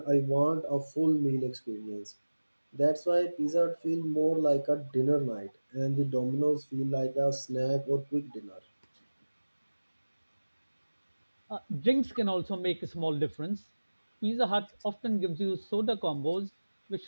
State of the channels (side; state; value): both; inverted; correlation -1.00